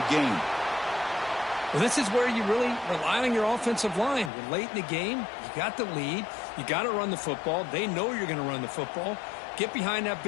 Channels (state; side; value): drops out; right; at 4.3 s